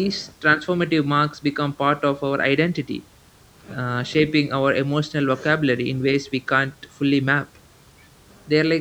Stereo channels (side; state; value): both; identical; correlation 1.00